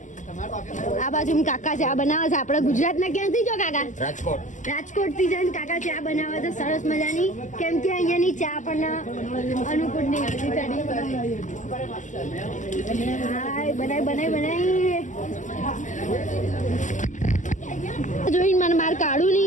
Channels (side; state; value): right; late; 0.36 ms